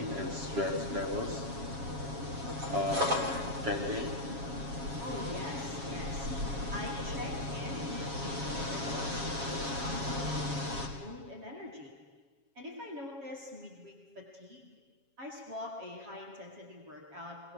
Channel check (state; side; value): late; left; 7.3 ms